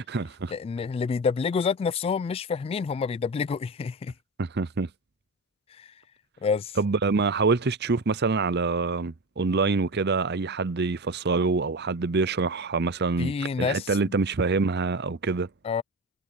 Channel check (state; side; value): normal; both; correlation 0.24